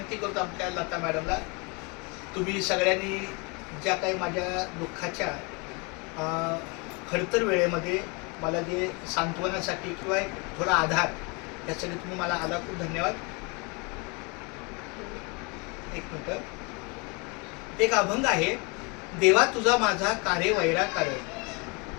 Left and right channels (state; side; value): quieter; right; 30.5 dB